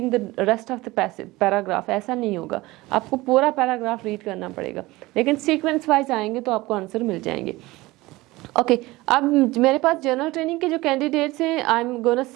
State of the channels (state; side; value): quieter; left; 20.0 dB